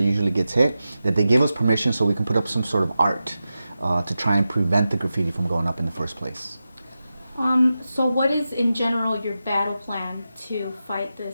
usually gets hit, that they give us permission so we can put up some sort of art to try and prevent the graffiti from going up in the first place. So what is, in general, your battle plan to fight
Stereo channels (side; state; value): both; inverted; correlation -0.92